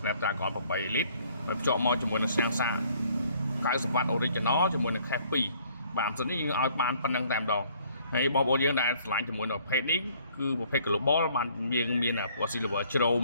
8 lít ហើយភ្ជាប់មកជាមួយនឹងសាំងសា90W Original ជាមួយនឹង Cache 2បាទសិននេះយើងឲ្យបានប៉ុណ្្នឹងតែម្ដងហើយបងប្អូនយើងដែលឆ្លាញ់ជាមួយនឹងប្រភេទនេះគឺប្រភេទ Global បានយើងមានពណ៌ Silver ជ្រោម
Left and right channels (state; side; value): inverted; both; correlation -0.61